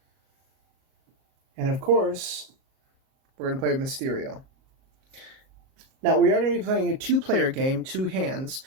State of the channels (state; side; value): late; left; 37 ms